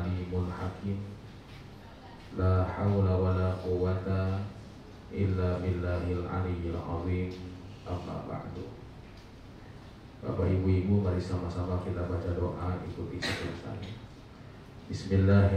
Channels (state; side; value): identical; both; correlation 1.00